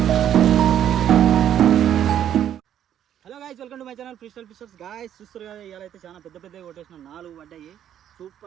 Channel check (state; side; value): quieter; left; 10.3 dB